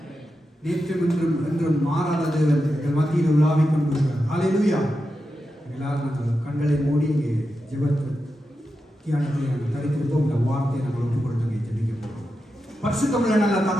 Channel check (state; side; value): normal; both; correlation 0.89